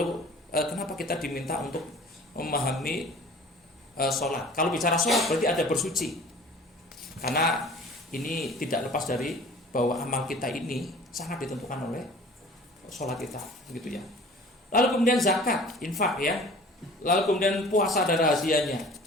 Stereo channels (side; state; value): both; normal; correlation 0.46